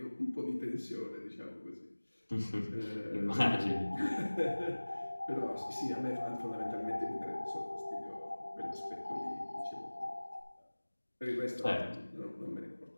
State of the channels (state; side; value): inverted; both; correlation -1.00